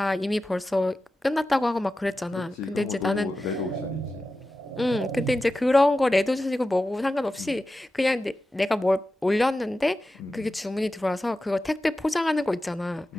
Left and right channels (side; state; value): both; normal; correlation 0.93